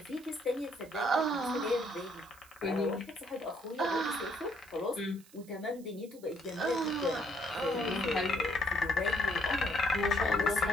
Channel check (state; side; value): noise; right; hiss, 24 dB below the sound